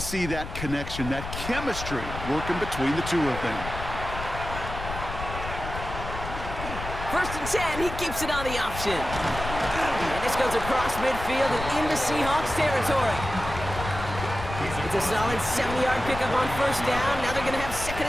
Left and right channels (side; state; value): left; noise; rumble, 8 dB below the sound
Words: that connection, that chemistry working between the two of them. First and 10, he keeps it on the option. And this goes across midfield and into Seahawks territory. It's a solid 70-yard pickup on first down. Now they're going to have